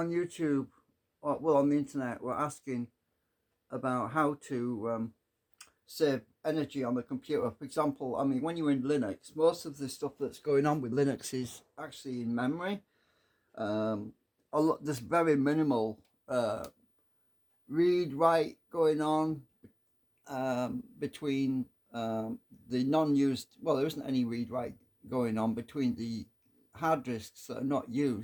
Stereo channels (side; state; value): both; identical; correlation 1.00